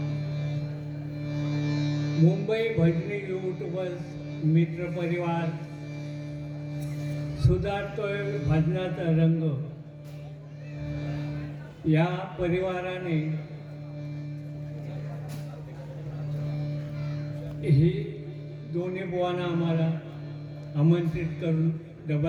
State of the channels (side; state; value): both; identical; correlation 1.00